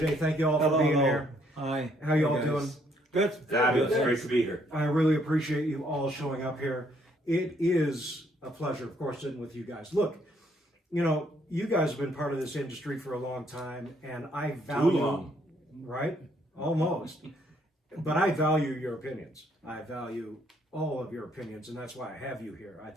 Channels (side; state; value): both; normal; correlation 0.69